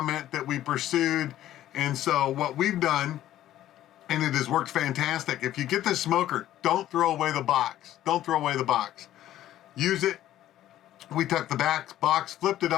that we pursued, and so what we've done, and it has worked fantastic. If you get this smoker, don't throw away the box. Don't throw away the box. Use it. We took the box, flipped it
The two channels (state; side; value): quieter; right; 13.0 dB